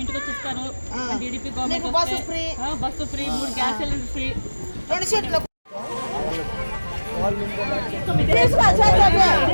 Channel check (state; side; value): inverted; both; correlation -1.00